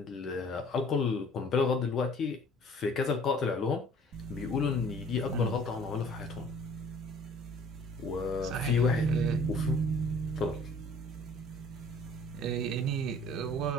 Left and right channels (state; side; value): normal; both; correlation 0.52